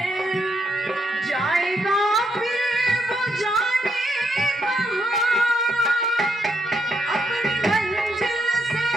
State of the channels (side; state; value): both; normal; correlation 0.77